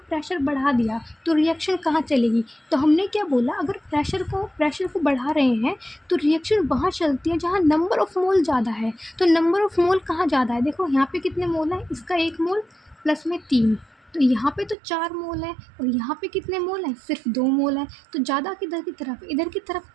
बढ़ा दिया तो रिएक्शन कहाँ चलेगी, तो हमने क्या बोला, अगर प्रेशर को बढ़ा रहे हैं तो रिएक्शन वहाँ चलती है जहाँ नंबर ऑफ मोल ज़्यादा है। तो नंबर ऑफ मोल कहाँ ज़्यादा है, देखो यहाँ पे कितने मोल है, इसका 1 मोल प्लस में 3, तो यहाँ पे तो 4 मोल है और यहाँ पे कितने मोल हैं, सिर्फ 2 मोल हैं। तो ज़्यादा किधर की तरफ, इधर की तरफ,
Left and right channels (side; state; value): left; drops out; at 14.8 s